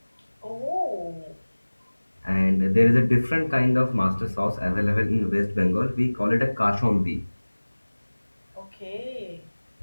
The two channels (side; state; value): both; inverted; correlation -1.00